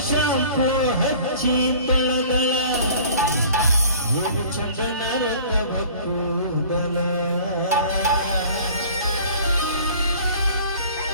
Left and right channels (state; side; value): inverted; both; correlation -0.47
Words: ಶಾಂಪು ಹಚ್ಚಿ ತೊಳೆದಳ ಏನು ಚಂದ ನಾನಂತ ಭಕ್ತೂದಲ